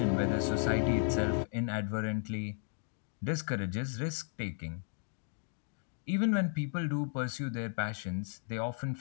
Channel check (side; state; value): right; silent; 55 dB below the other